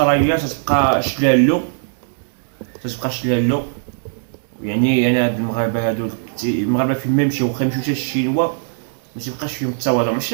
تتبقى شلالو. يعني انا هاد المغاربه هادو المغاربه فين ما يمشيو واخا يمشيو حتى الشينوا ما تيبقاش فيهم التواضع.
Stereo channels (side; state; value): left; silent; digital silence